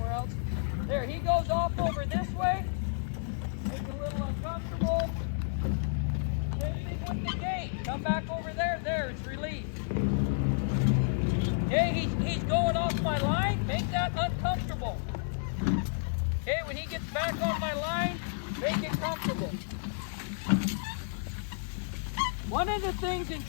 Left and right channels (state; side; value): silent; right; digital silence